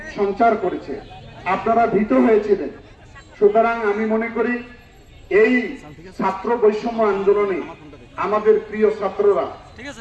সঞ্চার করেছে। আপনারা ভীত হয়েছিলেন। সুতরাং আমি মনে করি এই ছাত্র বৈষম্য আন্দোলনে আমাদের প্রিয় ছাত্ররা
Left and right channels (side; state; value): both; identical; correlation 1.00